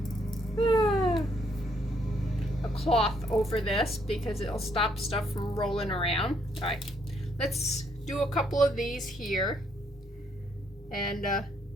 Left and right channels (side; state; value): both; normal; correlation 0.70